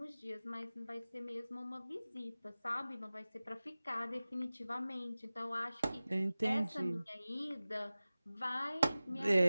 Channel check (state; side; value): inverted; both; correlation -0.97